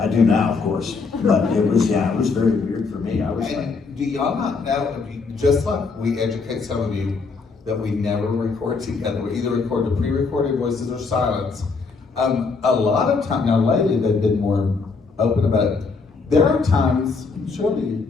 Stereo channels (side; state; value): right; quieter; 4.5 dB